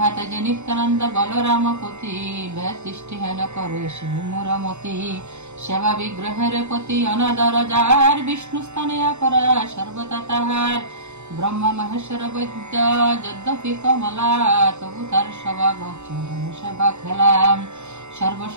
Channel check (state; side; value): late; left; 0.82 ms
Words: যে নিত্যানন্দ বলরাম পতি, ব্যতিষ্ঠি হেন করে সে মোরমতি। সেবা বিগ্রহের প্রতি অনাদর যার, বিষ্ণু স্থানে অপরা সর্বদা তাহার। ব্রহ্মা মহেশ্বর বৈদ্য যদ্যপি কমলা, তবু তার স্বভাব চরণ সেবা খেলাম।